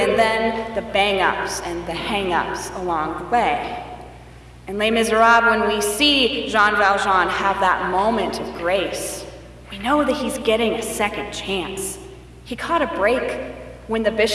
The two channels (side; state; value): both; identical; correlation 1.00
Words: then the bang-ups and the hang-ups along the way. In Les Miserables, when we see Jean Valjean have that moment of grace, we know that he's getting a second chance. He caught a break when the